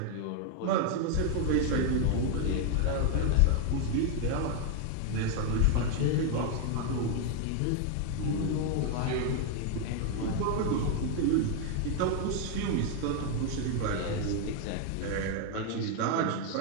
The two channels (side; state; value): both; different; correlation 0.01